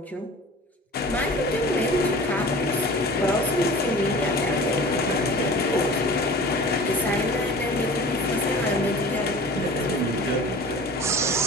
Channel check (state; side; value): normal; both; correlation 0.40